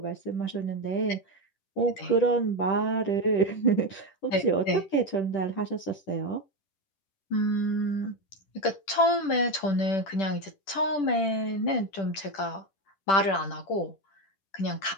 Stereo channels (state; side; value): late; right; 10 ms